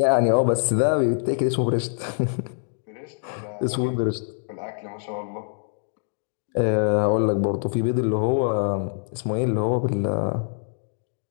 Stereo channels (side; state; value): right; silent; digital silence